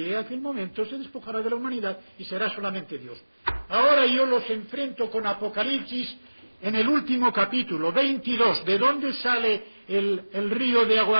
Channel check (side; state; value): both; inverted; correlation -1.00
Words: a aquel momento, se despojará de la humanidad y será solamente Dios. Ahora yo los enfrento con Apocalipsis en el último capítulo, 22. ¿De dónde sale el río de agua